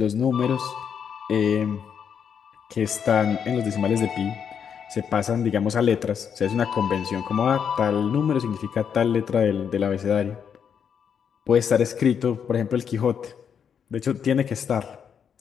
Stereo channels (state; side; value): quieter; right; 7.5 dB